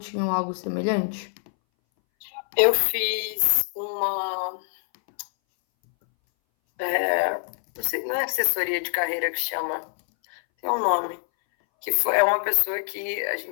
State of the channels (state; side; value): silent; right; 61 dB below the other